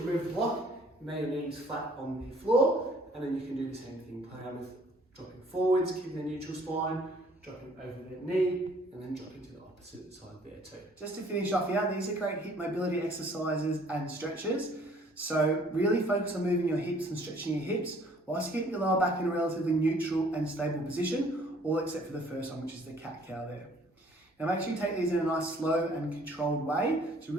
the block, lay your knees flat on the floor, and then you can do the same thing. Play around with dropping forwards, keeping the neutral spine, dropping over the knee, and then dropping to the opposite side there too. Just to finish off here, these are great hip mobility exercises and stretches. So really focus on moving your hips and stretching your hips, whilst keeping your lower back in a relatively neutral and stable position, all except for the first one, which is the cat-cow there. Now make sure you take these in a nice slow and controlled way to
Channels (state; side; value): normal; both; correlation 0.58